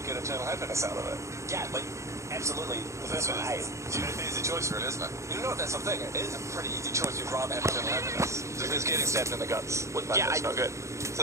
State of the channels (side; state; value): left; late; 0.14 ms